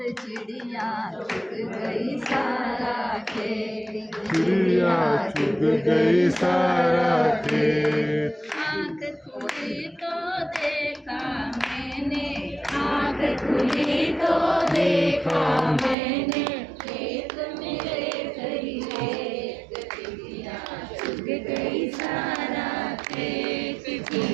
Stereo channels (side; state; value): left; drops out; at 16.0 s